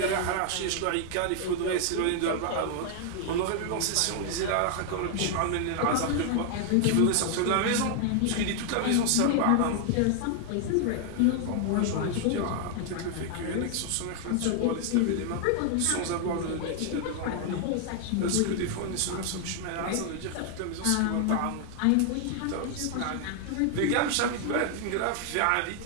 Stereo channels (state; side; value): different; both; correlation 0.00